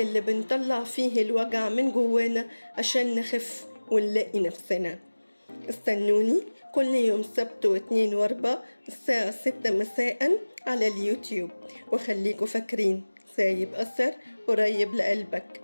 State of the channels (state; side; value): inverted; both; correlation -1.00